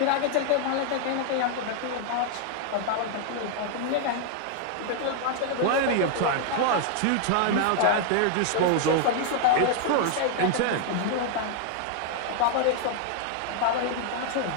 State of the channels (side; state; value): both; different; correlation 0.00